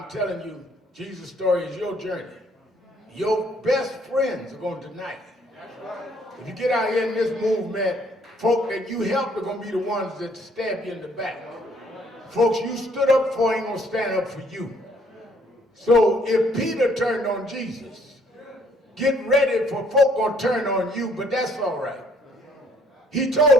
telling you, Jesus' story is your journey. Your best friends are going to deny you. If you get out here in this movement, folk that you helped are going to be the ones that stab you in the back. Folks you stood up for ain't going to stand up for you. So if Peter turned on Jesus, get ready for folk going to turn on you, but that's all right. He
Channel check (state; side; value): normal; both; correlation 0.64